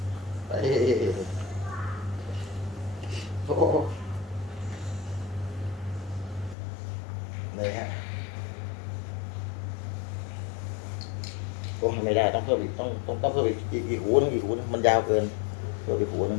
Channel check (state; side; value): drops out; right; at 6.6 s